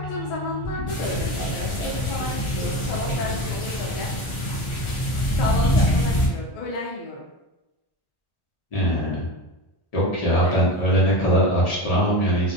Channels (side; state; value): right; late; 1.4 ms